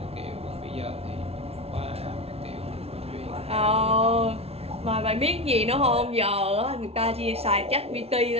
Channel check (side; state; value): left; late; 0.30 ms